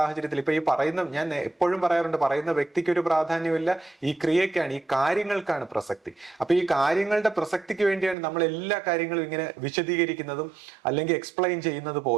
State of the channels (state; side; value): drops out; left; at 8.2 s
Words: ഇപ്പൊ ഞാൻ എപ്പോഴും പറയാറുണ്ട്, പറയുന്ന വ്യക്തിക്ക് ഒരു പ്രാധാന്യമില്ല, ഈ ക്രിയക്കാണ്, ഈ കാര്യങ്ങൾക്കാണ് പ്രസക്തി. അപ്പൊ ഈ കാര്യങ്ങളുടെ പ്രസക്തിക്ക് വേണ്ടിയാണ് നമ്മൾ എല്ലാ കാര്യങ്ങളും ഇങ്ങനെ വിശദീകരിക്കുന്നതും അല്ലെങ്കിൽ എക്സ്പ്ലെയിൻ ചെയ്യുന്നത്